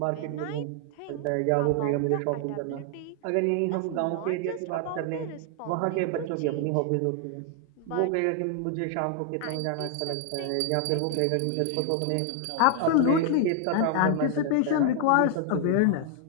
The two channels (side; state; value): both; different; correlation 0.00